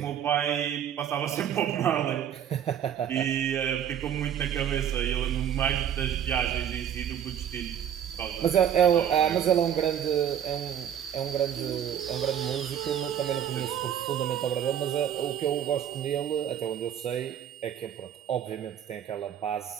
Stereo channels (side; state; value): left; quieter; 9.5 dB